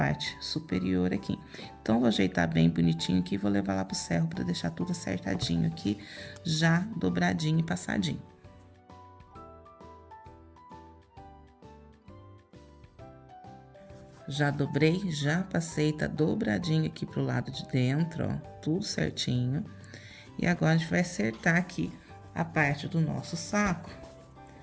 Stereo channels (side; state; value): both; identical; correlation 1.00